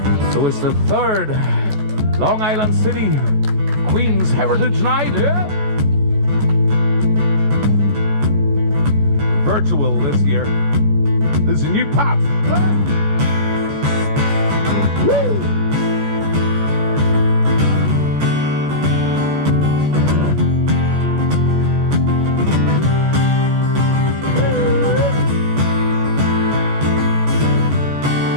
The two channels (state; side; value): late; left; 14 ms